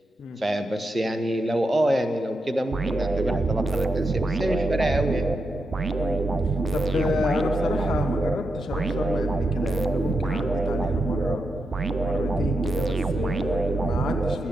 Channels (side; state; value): both; normal; correlation 0.85